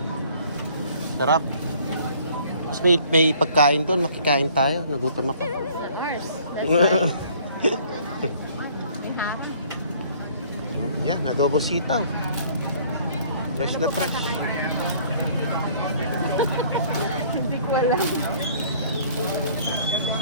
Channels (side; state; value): both; inverted; correlation -0.56